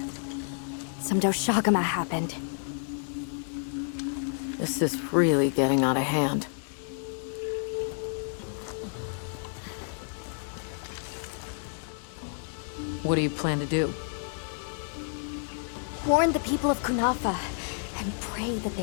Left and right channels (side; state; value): right; silent; digital silence